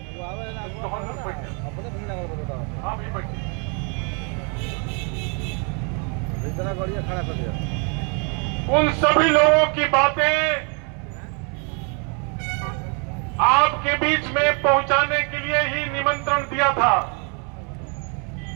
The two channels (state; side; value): quieter; left; 37.2 dB